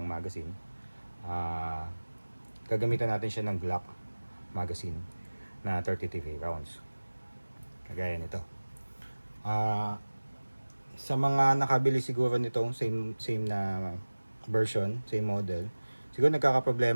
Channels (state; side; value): inverted; both; correlation -1.00